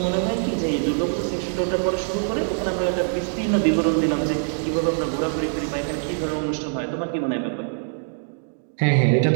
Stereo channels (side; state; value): left; silent; digital silence